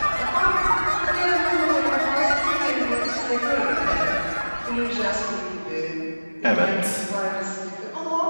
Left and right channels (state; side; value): inverted; both; correlation -1.00